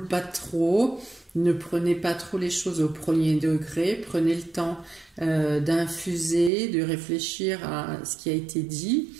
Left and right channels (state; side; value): drops out; left; at 6.5 s